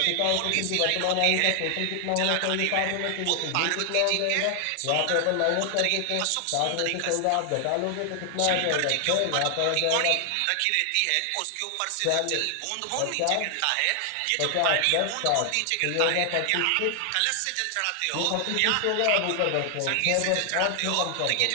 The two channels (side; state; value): both; different; correlation 0.00